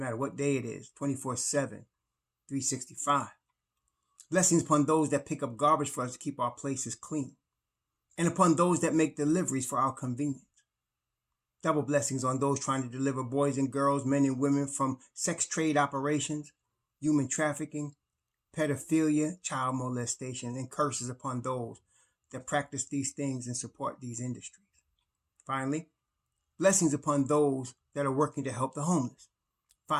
matter what day it is, 24/7, 365. Blessings upon those that pick up garbage for us to keep our places clean, and upon those that make deliveries for our convenience. Double blessings on those trying to deliver boys and girls, men and women from sex trade operations, human trafficking, pedophilia, child molestation, and curses upon those that practice these things and support these industries. Finally, blessings upon those that are working to help the homeless.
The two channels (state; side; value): identical; both; correlation 1.00